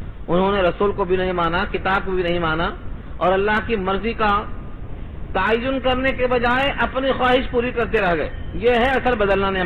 انہوں نے رسول کو بھی نہیں مانا، کتاب کو بھی نہیں مانا، اور اللہ کی مرضی کا تعین کرنے کے بجائے اپنی خواہش پوری کرتے رہ گئے۔ یہ ہے اصل بدلنا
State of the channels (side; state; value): both; identical; correlation 1.00